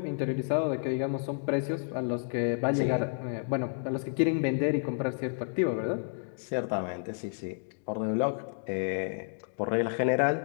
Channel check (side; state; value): right; silent; digital silence